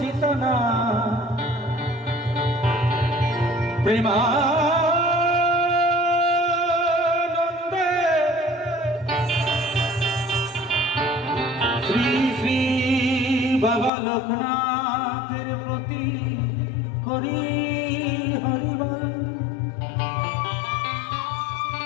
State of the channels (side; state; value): right; drops out; at 13.9 s